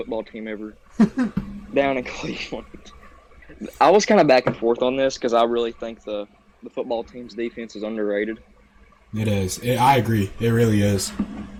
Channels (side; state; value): both; identical; correlation 1.00